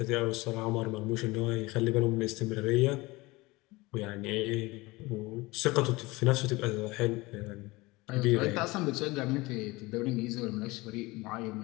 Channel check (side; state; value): right; quieter; 22.1 dB